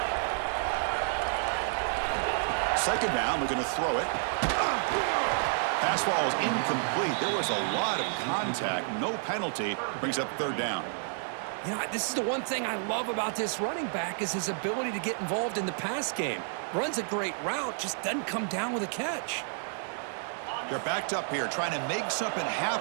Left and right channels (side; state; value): left; silent; 58 dB below the other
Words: Second down, we're going to throw it. Pass ball is incomplete. There was a lot of contact. No penalty. Brings up 3rd down. You know, this is the one thing I love about this running back is his ability to get involved in the pass game. Runs a great route, just doesn't come down with a catch. They're backed up here, trying to make something